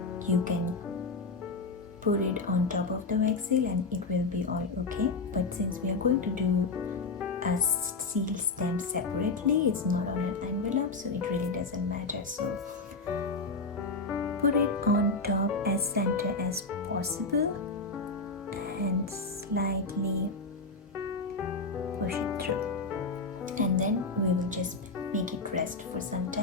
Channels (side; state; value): right; quieter; 3.8 dB